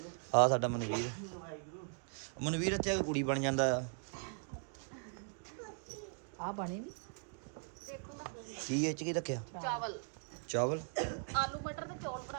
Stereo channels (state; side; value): silent; left; 52 dB below the other